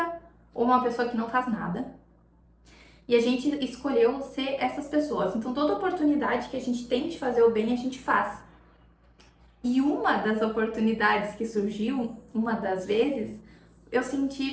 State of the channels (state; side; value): identical; both; correlation 1.00